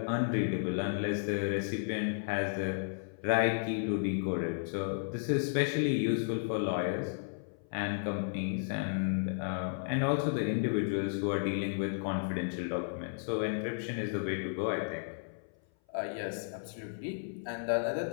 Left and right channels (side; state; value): right; silent; 55 dB below the other